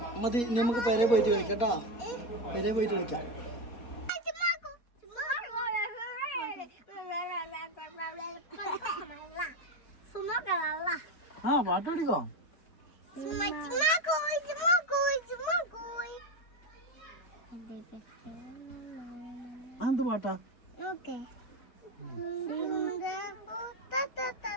മതി നമുക്ക് പെരെ പോയിട്ട് കളിക്കാം കേട്ടോ. പെരെ പോയിട്ട് കളിക്കാം. ആ പാട്ട് പഠിക്കോ? എന്ത് പാട്ടാ?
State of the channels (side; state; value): right; late; 4.2 ms